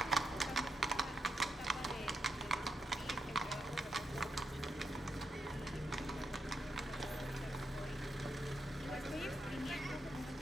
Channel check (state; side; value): normal; both; correlation 0.82